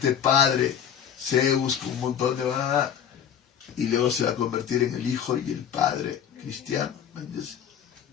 Padre, Zeus, con un montón de... y luego se va a convertir en el Hijo y el Padre cristiano. ¿Me entiendes?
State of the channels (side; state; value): right; quieter; 8.7 dB